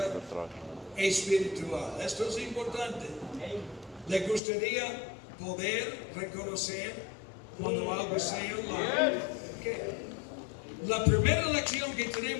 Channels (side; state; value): right; drops out; at 4.4 s